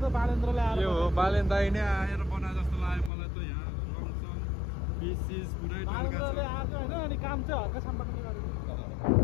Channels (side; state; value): right; drops out; at 3.1 s